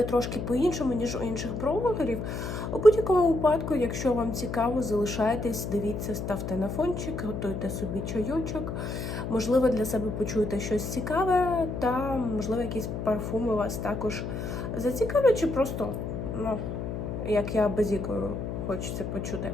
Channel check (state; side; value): noise; left; hum, 4 dB below the sound